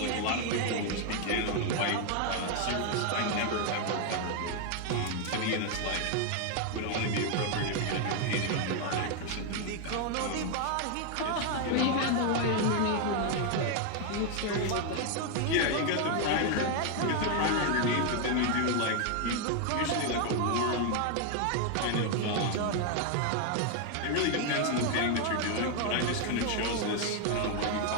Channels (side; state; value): both; different; correlation 0.01